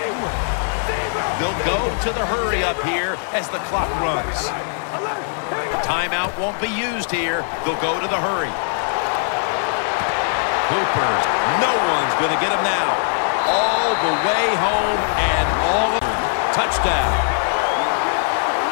They'll go to the hurry up here as the clock runs. Timeout won't be used here. They'll go to the hurry. Hoopers, no one's going to get him now. All the way home and all of touchdown.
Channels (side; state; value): right; silent; 56 dB below the other